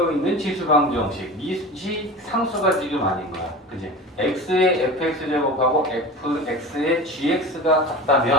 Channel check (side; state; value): both; normal; correlation 0.32